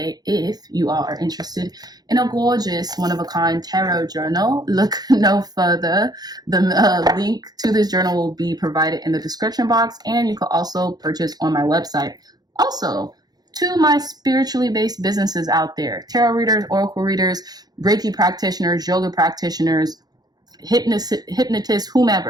If you all are interested in a gorgeous, one-of-a-kind tarot journal, look no further. The link to this journal will be provided in the description box, and you can also purchase on my website. Also, to my spiritually based businesses out there, tarot readers, oracle readers, Reiki practitioners, yoga practitioners, hypnotists,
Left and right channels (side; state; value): left; late; 0.19 ms